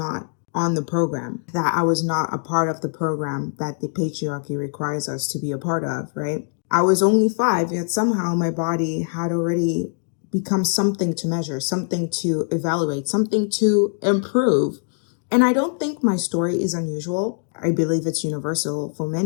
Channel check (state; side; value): silent; right; 64 dB below the other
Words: on the program, that I was not a part of the program that the patriarchy requires us to be a part of, right? I was only 5, yet somehow my body had already become something to measure, something to evaluate, something to improve. And I don't think my story is unusual. I believe it's universal for